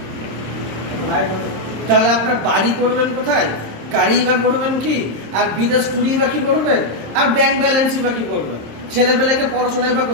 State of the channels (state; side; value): late; left; 27 ms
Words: তাহলে আপনার বাড়ি করবেন কোথায়, গাড়ি বা করবেন কি, আর বিদেশ টুরি বা কি করবেন, আর ব্যাংক ব্যালেন্সই বা কি করবেন, ছেলেপেলেকে পড়াশোনায় বা